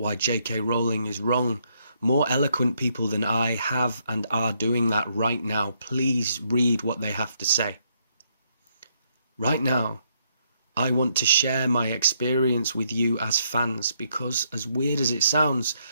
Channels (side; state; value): both; inverted; correlation -0.74